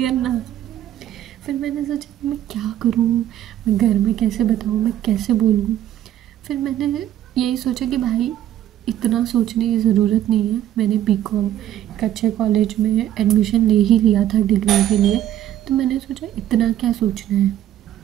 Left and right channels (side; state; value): left; quieter; 12.0 dB